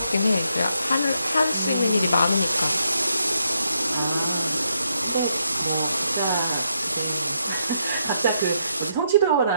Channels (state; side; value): inverted; both; correlation -0.78